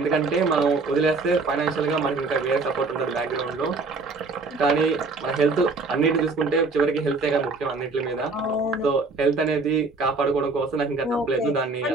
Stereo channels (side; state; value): left; quieter; 3.8 dB